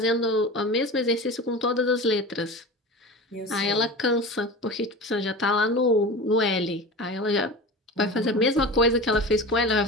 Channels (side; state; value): both; normal; correlation 0.31